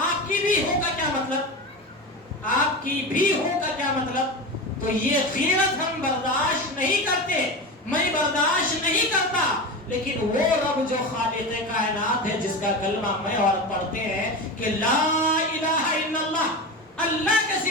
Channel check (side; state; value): both; normal; correlation 0.24